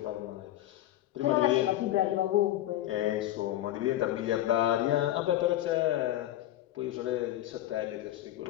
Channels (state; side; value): quieter; right; 13.9 dB